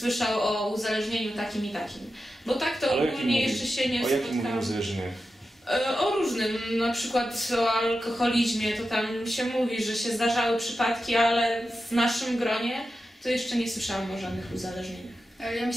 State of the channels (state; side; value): normal; both; correlation 0.91